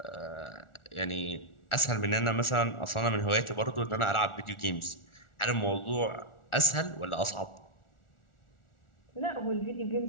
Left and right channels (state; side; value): late; right; 1.4 ms